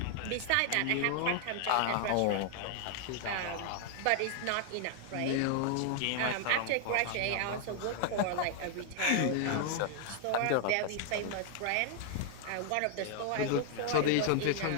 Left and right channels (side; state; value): both; different; correlation 0.00